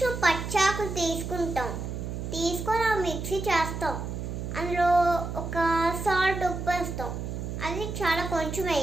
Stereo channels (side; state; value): right; noise; hum, 5 dB below the sound